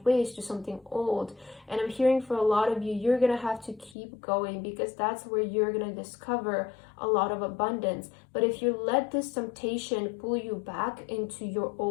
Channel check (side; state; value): right; drops out; at 4.0 s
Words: ways, to something old. And I'm hearing for a lot of you, you're going to have to keep going because that's where you're going to discover a lot of abundance. But if you let this temptation pull you back into your